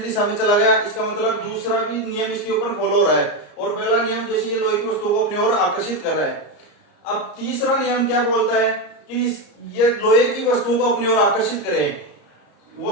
दिशा में चला गया। इसका मतलब दूसरा भी नियम इसके ऊपर फॉलो हो रहा है। और पहला नियम जैसे ये लोहे की वस्तुओं को अपनी ओर आकर्षित कर रहा है। अब तीसरा नियम क्या बोलता है कि ये लोहे की वस्तुओं को अपनी ओर आकर्षित करें,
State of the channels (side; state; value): right; late; 34 ms